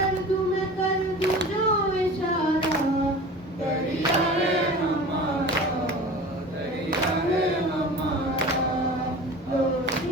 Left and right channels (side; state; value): both; normal; correlation 0.37